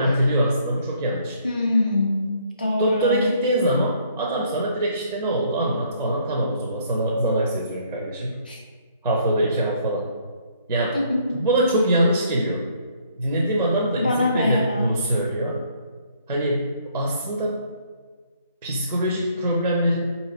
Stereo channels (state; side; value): inverted; both; correlation -0.65